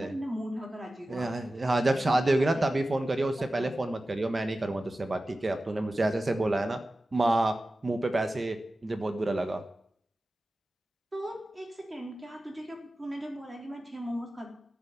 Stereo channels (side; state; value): both; normal; correlation 0.95